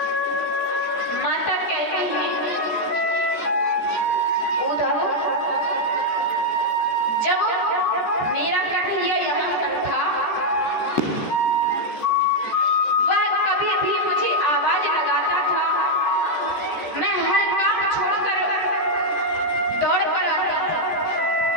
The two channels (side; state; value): right; late; 14 ms